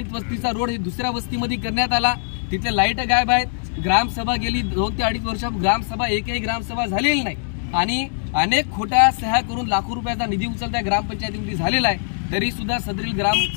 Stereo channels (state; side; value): silent; right; digital silence